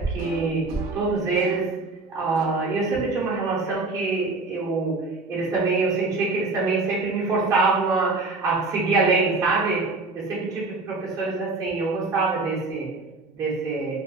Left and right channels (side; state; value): left; quieter; 3.5 dB